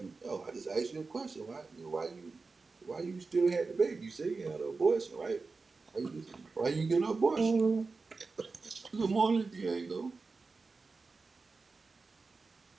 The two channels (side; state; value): left; quieter; 4.1 dB